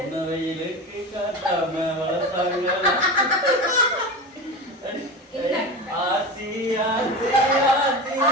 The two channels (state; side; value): normal; both; correlation 0.26